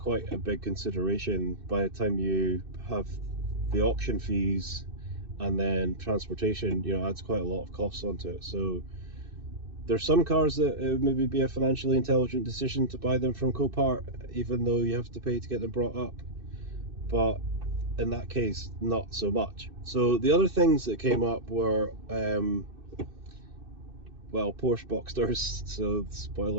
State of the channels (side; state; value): left; late; 2.6 ms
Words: a big consideration by the time you have the auction fees and then transportation, adds quite a lot of costs onto it. So there's some cars that it would maybe be a financially intelligent decision to buy them from Copart, even though you have to pay to get them brought up. But in that case, not so much. So the other things that came up were, Porsche Boxsters. So